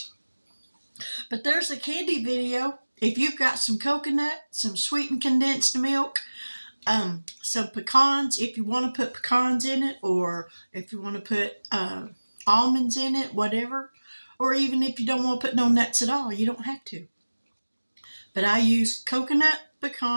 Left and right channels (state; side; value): inverted; both; correlation -1.00